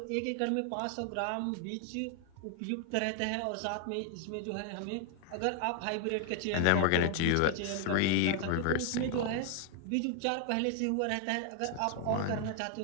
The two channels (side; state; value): both; different; correlation 0.00